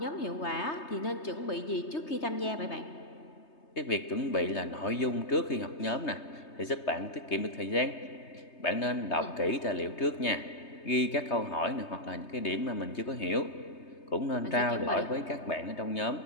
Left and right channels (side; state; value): right; late; 3.3 ms